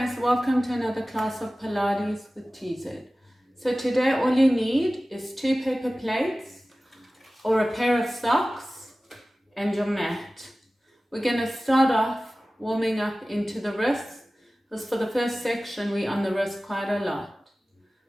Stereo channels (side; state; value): both; normal; correlation 0.97